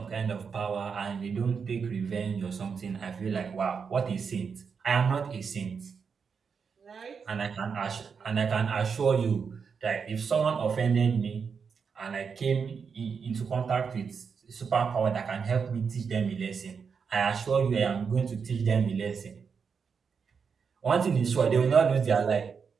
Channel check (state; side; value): quieter; left; 6.0 dB